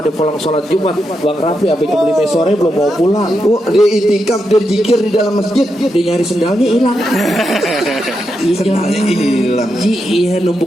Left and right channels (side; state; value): both; normal; correlation 0.84